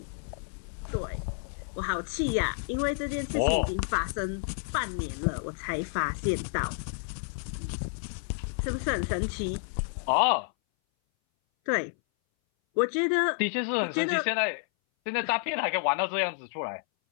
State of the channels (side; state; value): right; silent; 58 dB below the other